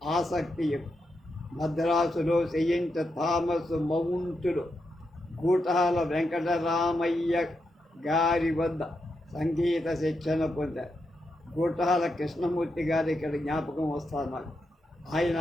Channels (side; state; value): both; normal; correlation 0.84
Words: ఆసక్తి ఎక్కువ. మద్రాసులో సెయింట్ థామస్ మౌంటులో గూటాల వెంకటరామయ్య గారి వద్ద సంగీత శిక్షణ పొందారు. గూటాల కృష్ణమూర్తి గారు ఇక్కడ జ్ఞాపకం వస్తారు నాకు. ఆయన